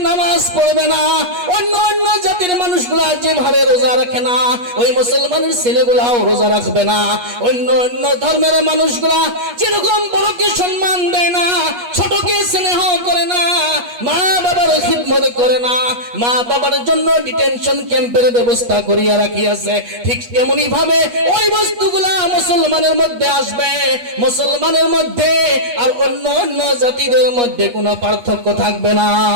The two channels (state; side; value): late; left; 8.3 ms